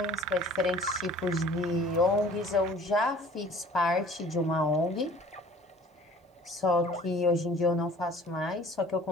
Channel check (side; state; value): both; normal; correlation 0.49